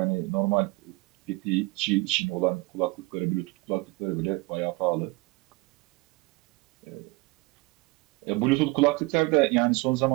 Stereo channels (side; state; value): left; quieter; 24.2 dB